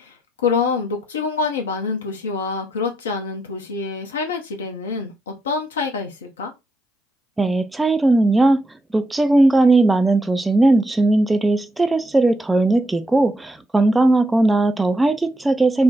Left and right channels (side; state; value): both; normal; correlation 0.82